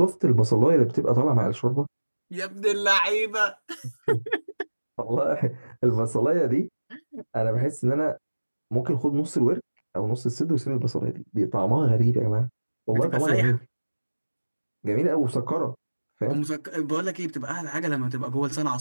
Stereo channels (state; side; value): inverted; both; correlation -1.00